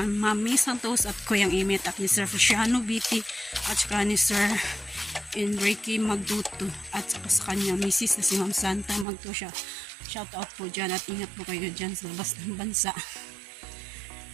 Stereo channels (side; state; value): left; drops out; at 9.1 s